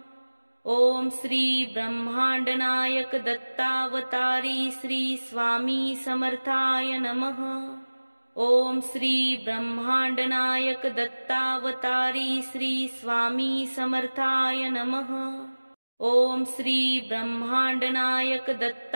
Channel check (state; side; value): inverted; both; correlation -1.00